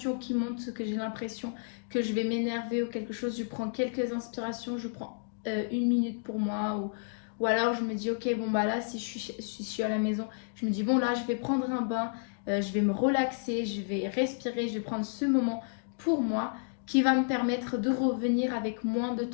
qui monte, que j'ai l'impression que je vais m'énerver ou quelque chose, je prends quelques inspirations, je prends 1 minute pour moi ou alors je me dis ok bon bah là si je suis à la maison, je me dis bon là je vais prendre un bain, je vais me relaxer, je vais respirer, je vais prendre ce moment pour moi qui va me permettre de revenir avec moins de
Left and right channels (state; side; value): silent; right; digital silence